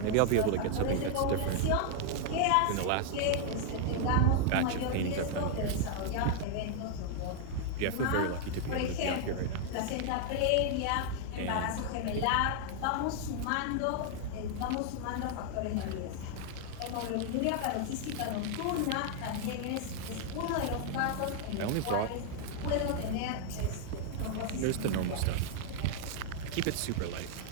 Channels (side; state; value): both; different; correlation -0.01